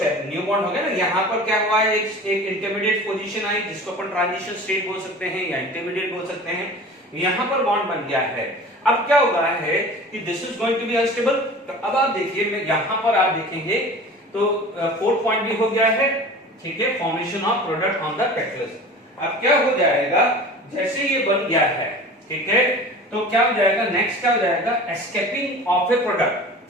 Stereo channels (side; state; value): both; normal; correlation 0.39